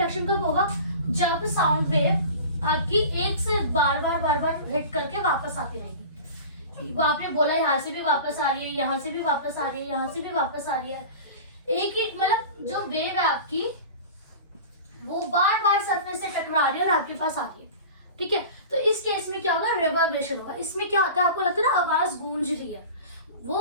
कब होगा, जब साउंड वेव आपकी एक से बार बार हिट करके वापस आती रहेगी। आपने बोला यहाँ से भी वापस आ रही है, यहाँ से भी वापस आ रही है, यहाँ से भी वापस आ रही है, एक मतलब जो वेव है आपकी वो बार बार सरफेस से टकरा रही है और आपके पास आ रही है। ठीक है, तो इस केस में क्या होगा, रिवर्बरेशन होगा। इसमें क्या होता है, आपको लगता है ना आवाज गूंज रही है,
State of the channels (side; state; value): both; inverted; correlation -0.36